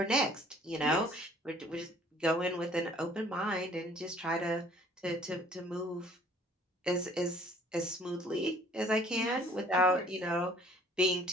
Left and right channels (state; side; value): normal; both; correlation 0.56